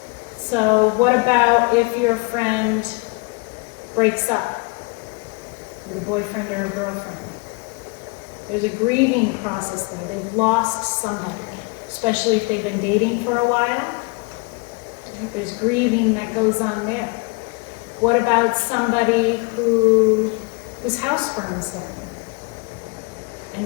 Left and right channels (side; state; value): right; quieter; 28.6 dB